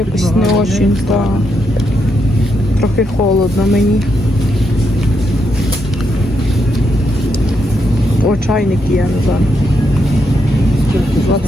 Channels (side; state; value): both; normal; correlation 0.80